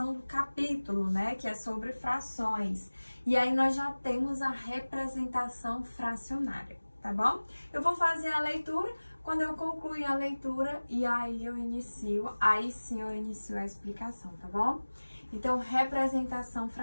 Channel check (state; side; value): inverted; both; correlation -1.00